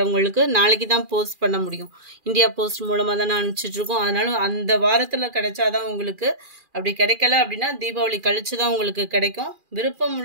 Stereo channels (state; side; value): late; left; 2.4 ms